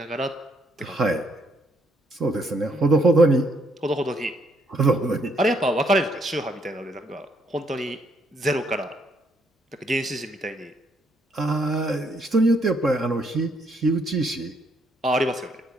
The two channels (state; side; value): normal; both; correlation 0.72